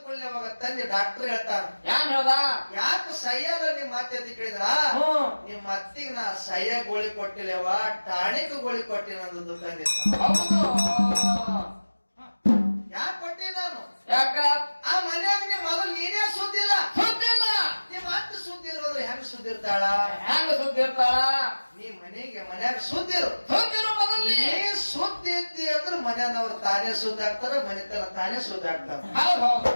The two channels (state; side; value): inverted; both; correlation -1.00